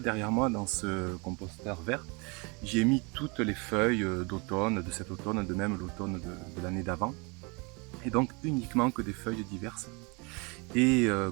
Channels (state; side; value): quieter; left; 30.0 dB